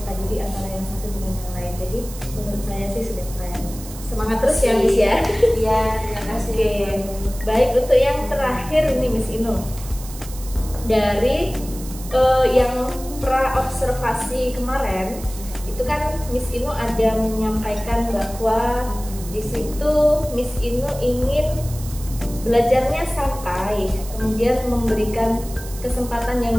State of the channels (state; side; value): noise; right; hiss, 15 dB below the sound